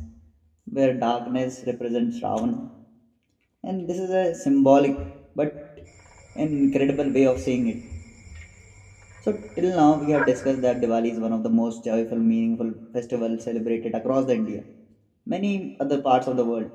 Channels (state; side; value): identical; both; correlation 1.00